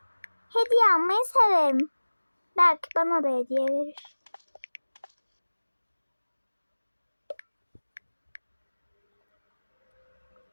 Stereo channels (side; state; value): both; inverted; correlation -1.00